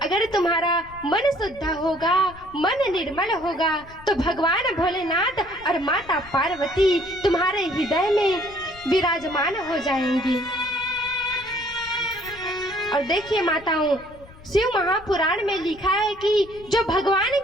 अगर तुम्हारा मन शुद्ध होगा, मन निर्मल होगा, तो भगवान भोलेनाथ और माता पार्वती तुम्हारे हृदय में विराजमान हो जाएंगी। और देखिए माताओं, शिव महापुराण में लिखा है कि जो भगवान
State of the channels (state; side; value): noise; left; rumble, 21 dB below the sound